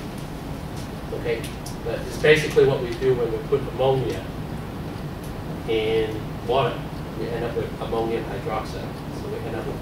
Okay? But it's basically what we do when we put ammonia in water. We end up with ammonium hydroxide. So we end up with a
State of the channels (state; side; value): identical; both; correlation 1.00